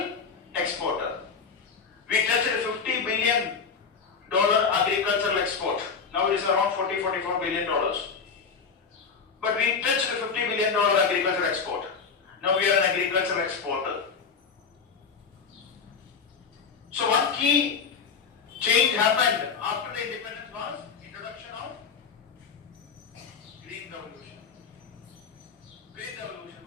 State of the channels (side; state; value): right; quieter; 5.7 dB